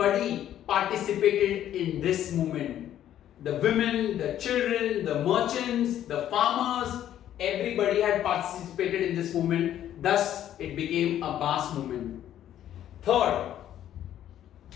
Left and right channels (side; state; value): right; quieter; 11.4 dB